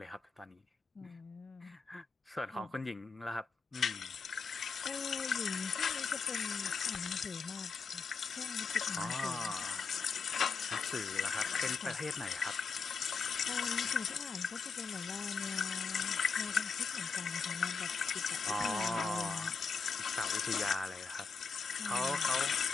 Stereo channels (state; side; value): quieter; right; 5.1 dB